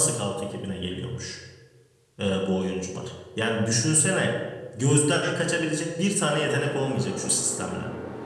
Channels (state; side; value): identical; both; correlation 1.00